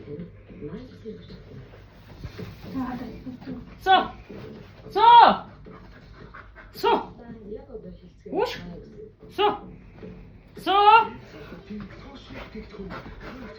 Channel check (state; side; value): identical; both; correlation 1.00